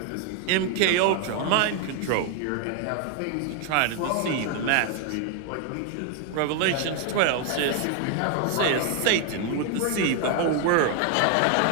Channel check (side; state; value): both; different; correlation 0.00